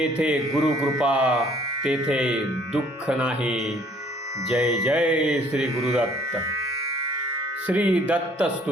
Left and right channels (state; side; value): normal; both; correlation 0.59